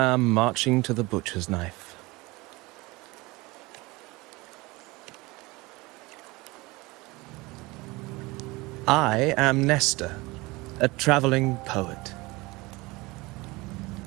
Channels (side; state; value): left; quieter; 22.9 dB